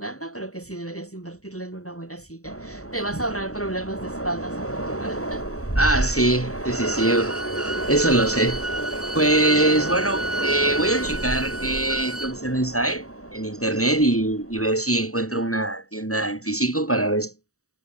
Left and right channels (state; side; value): late; right; 0.65 ms